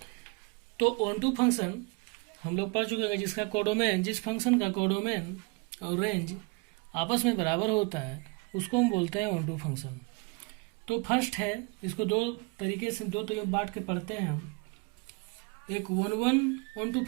तो ऑन टू फंक्शन हम लोग पढ़ चुके हैं, जिसका कोडोमेन, जिस फंक्शन का कोडोमेन और रेंज आपस में बराबर होता है उसको हम बोलते हैं ऑन टू फंक्शन। तो फर्स्ट है, इसको दो तरीके से बांट के पढ़ते हैं हम। एक वन ऑन टू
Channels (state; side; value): quieter; left; 29.3 dB